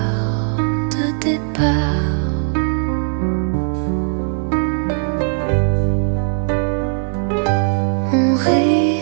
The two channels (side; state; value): left; silent; digital silence